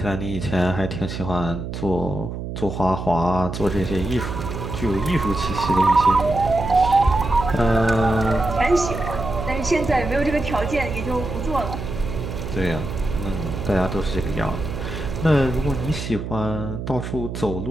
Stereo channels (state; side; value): noise; right; hum, 6 dB below the sound